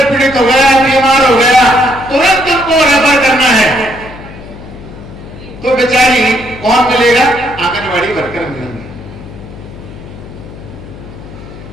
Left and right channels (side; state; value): left; noise; hum, 16 dB below the sound